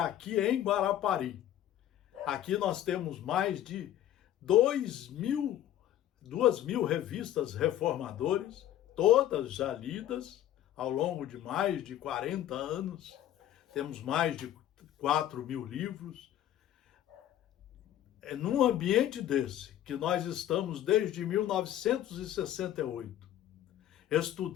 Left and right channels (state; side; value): quieter; right; 12.1 dB